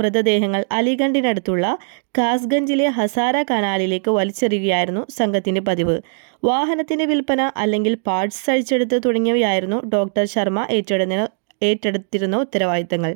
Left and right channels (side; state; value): left; silent; digital silence